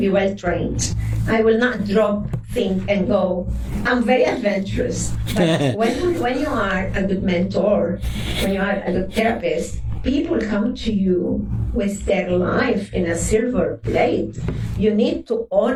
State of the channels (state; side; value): identical; both; correlation 1.00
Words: well trained. I will not drop, think, and go. I'm very adventurous. But when you are a good mentor, when you are a good therapist, people come to you with their life in a silver plate. You need to